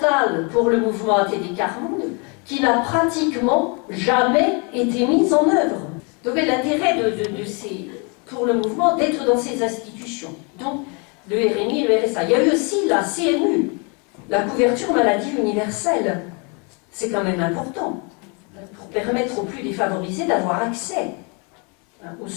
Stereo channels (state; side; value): quieter; right; 33.4 dB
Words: pour le mouvement ATD Quart Monde, qui n'a pratiquement jamais été mis en œuvre. Donc l'intérêt pour le mouvement d'être dans ces institutions. Donc le RMI et le RSA. Il y a eu aussi la CMU, la couverture maladie universelle. C'est quand même important, pour permettre aux plus défavorisés d'avoir accès aux